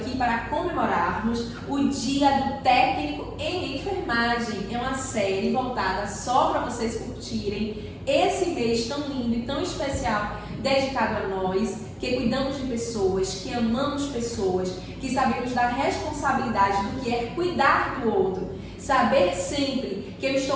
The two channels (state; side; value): identical; both; correlation 1.00